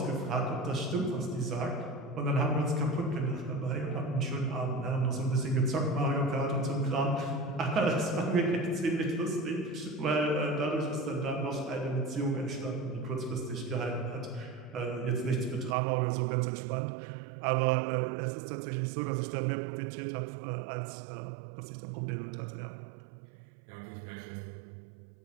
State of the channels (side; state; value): left; drops out; at 15.8 s